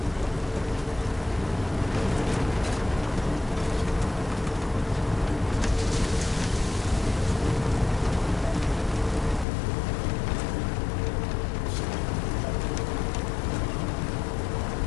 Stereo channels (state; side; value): drops out; right; at 9.5 s